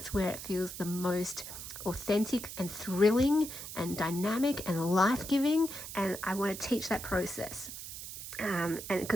where it feels the most authentic and thrilling and dynamic and life-giving, and I want to teach that process. And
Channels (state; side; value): noise; right; hiss, 10 dB below the sound